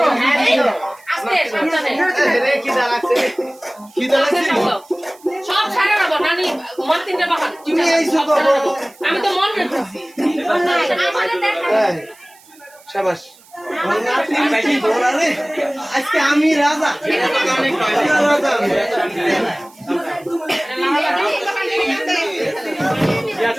সব ছাড়া না নানি মন তিনটা বাহার তুমি এই আমি তো মন রেখেছি শাবাশ আজকে আমি রাজা রাজা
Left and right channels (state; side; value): noise; right; hiss, 26 dB below the sound